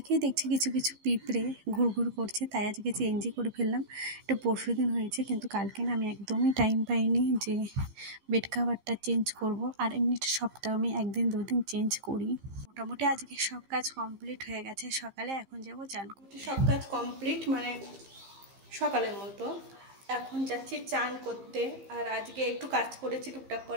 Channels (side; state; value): left; late; 15 ms